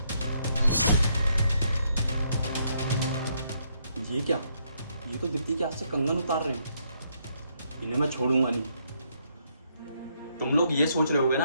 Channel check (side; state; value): both; inverted; correlation -0.74